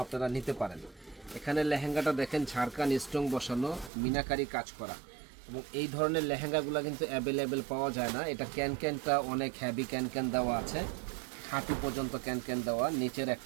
আপনারা নিতে পারেন। এখানে লেহেঙ্গাটা দেখেন ঝাড়খান স্টোন বসানো, মিনাকারি কাজ করা, এবং এই ধরনের লেহেঙ্গাগুলো কিন্তু অ্যাভেলেবেল পাওয়া যায় না। এটা ক্যানক্যানটা অনেক হ্যাভি ক্যানক্যান দেওয়া আছে, হাঁটু পর্যন্ত ক্যানক্যান দেওয়া, নিচের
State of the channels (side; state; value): left; drops out; at 3.9 s